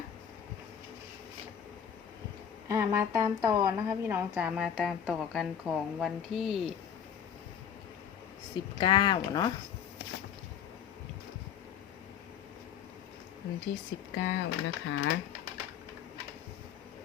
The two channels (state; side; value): quieter; right; 8.4 dB